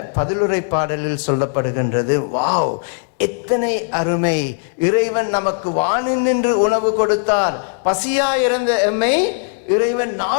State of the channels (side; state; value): right; silent; 67 dB below the other